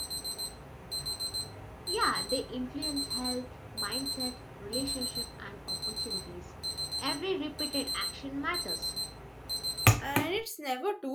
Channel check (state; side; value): identical; both; correlation 1.00